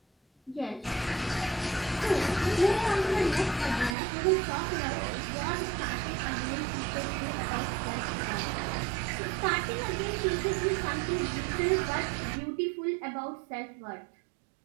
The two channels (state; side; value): drops out; left; at 4.0 s